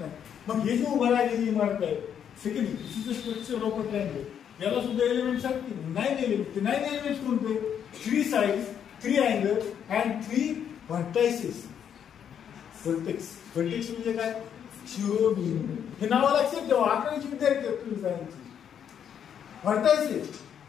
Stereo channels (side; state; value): right; quieter; 8.6 dB